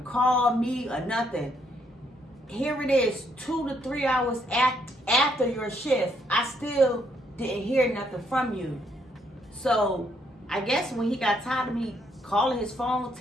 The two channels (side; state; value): both; normal; correlation 0.72